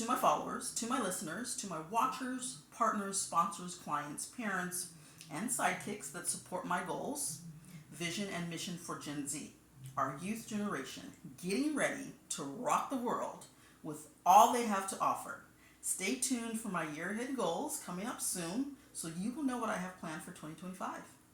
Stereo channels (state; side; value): identical; both; correlation 1.00